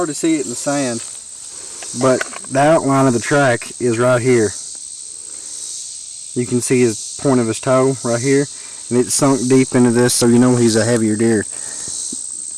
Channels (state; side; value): identical; both; correlation 1.00